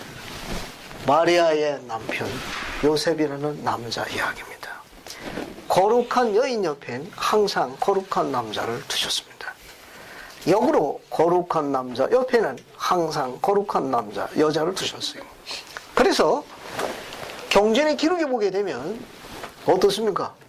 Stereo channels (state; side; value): identical; both; correlation 1.00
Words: 마리아의 남편 요셉이라는 남자 이야기입니다. 거룩한 여인 옆엔 항상 거룩한 남자를 두셨습니다. 역으로 거룩한 남자 옆에는 항상 거룩한 남자, 여자를 두셨어요. 그래서 경전의 기록에 보게 되면 어떻습니까?